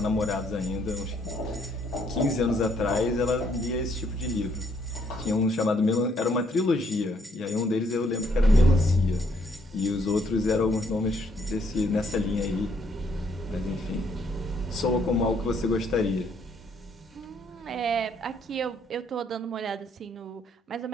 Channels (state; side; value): normal; both; correlation 0.69